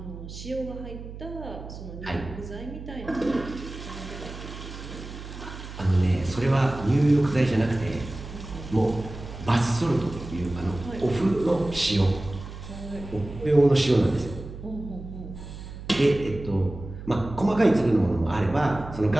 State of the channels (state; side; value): noise; right; hum, 12 dB below the sound